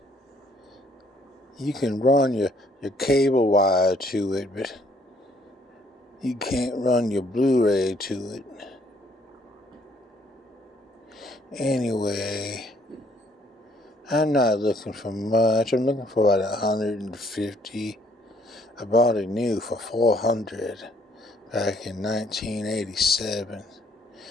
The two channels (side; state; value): both; normal; correlation 0.64